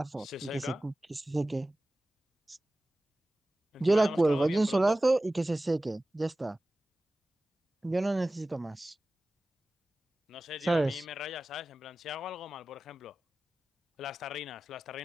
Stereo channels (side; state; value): both; normal; correlation 0.96